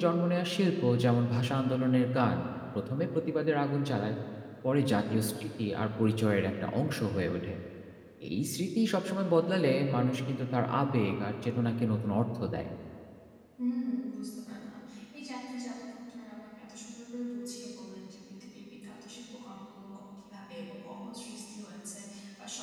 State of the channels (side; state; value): both; identical; correlation 1.00